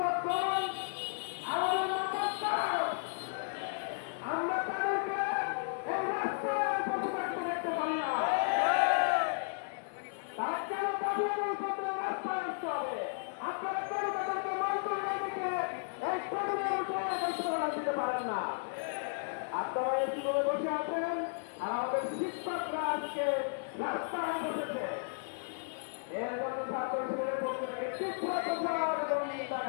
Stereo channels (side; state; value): right; silent; digital silence